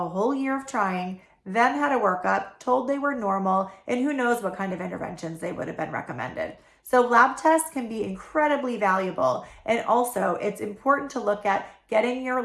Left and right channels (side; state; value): both; identical; correlation 1.00